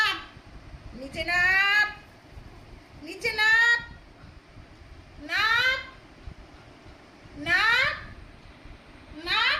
নিচে নাপ, নিচে নাপ, নাপ নাপ নাপ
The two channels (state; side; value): identical; both; correlation 1.00